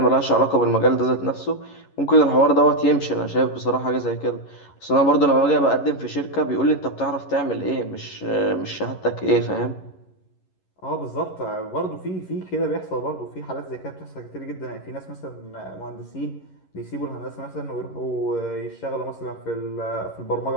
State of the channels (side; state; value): right; late; 11 ms